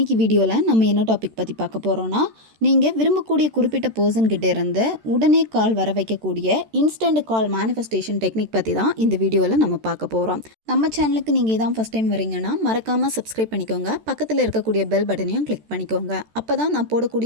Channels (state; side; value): late; left; 13 ms